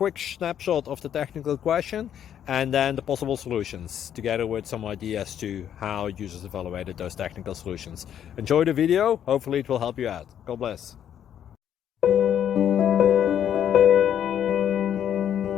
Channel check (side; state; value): right; quieter; 9.7 dB